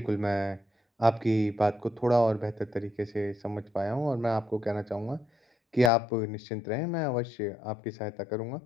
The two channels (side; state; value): right; drops out; at 5.9 s